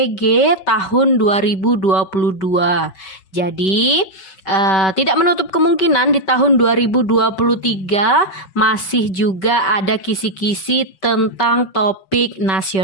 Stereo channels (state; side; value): late; right; 5.2 ms